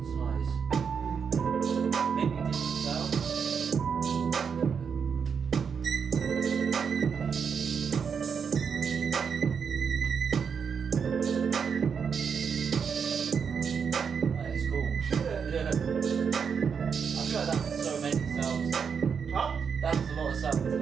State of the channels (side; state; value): left; quieter; 6.5 dB